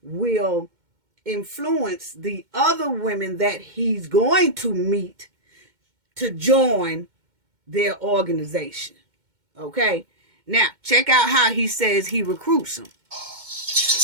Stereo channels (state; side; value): late; left; 2.1 ms